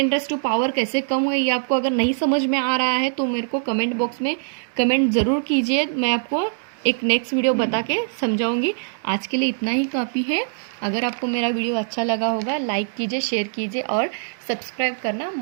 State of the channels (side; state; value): left; silent; digital silence